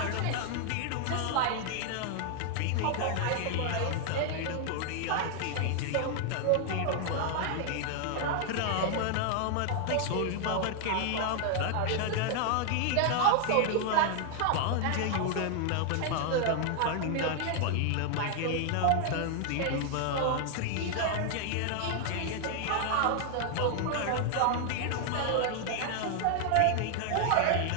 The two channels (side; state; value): both; different; correlation 0.00